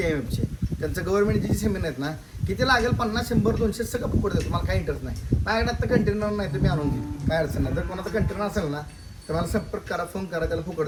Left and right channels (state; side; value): identical; both; correlation 1.00